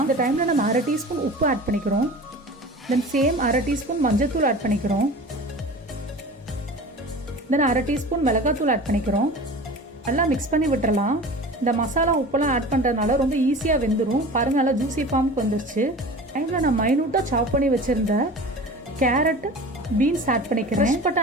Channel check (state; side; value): normal; both; correlation 0.37